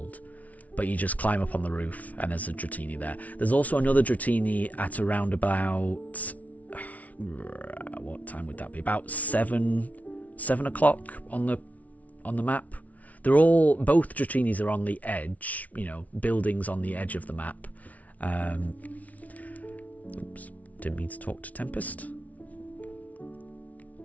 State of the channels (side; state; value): right; late; 0.070 ms